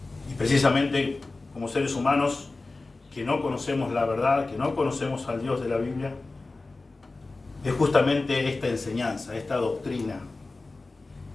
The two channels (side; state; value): right; quieter; 3.4 dB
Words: y precisamente como seres humanos que no conocemos la verdad, que no conocemos al Dios de la Biblia, es justamente esta enseñanza, esta doctrina